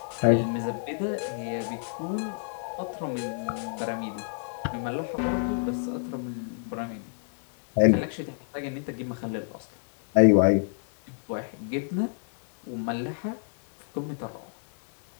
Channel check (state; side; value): silent; right; digital silence